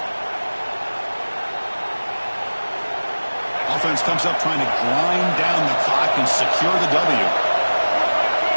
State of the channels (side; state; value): both; inverted; correlation -1.00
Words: offense comes up trying to grind down the clock and secure the W.